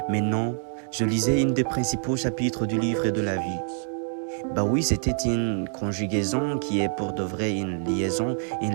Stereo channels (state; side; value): silent; left; digital silence